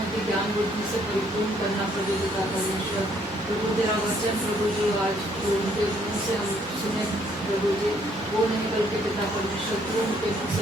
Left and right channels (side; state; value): both; normal; correlation 0.66